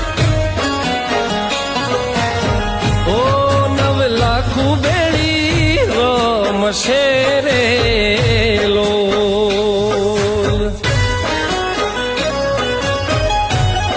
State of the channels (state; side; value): identical; both; correlation 1.00